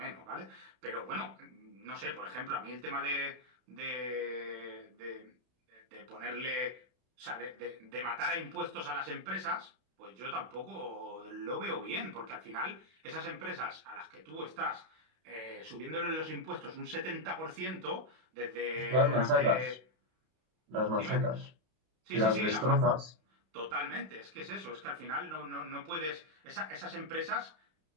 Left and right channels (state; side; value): late; left; 32 ms